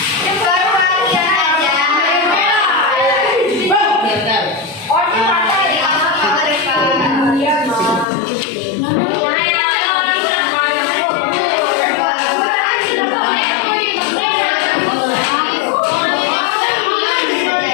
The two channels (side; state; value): right; drops out; at 8.1 s